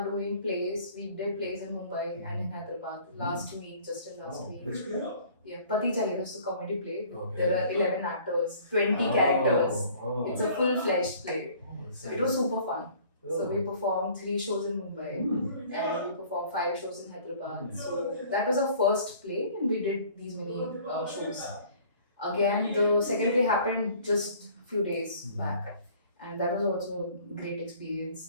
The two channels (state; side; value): inverted; both; correlation -0.52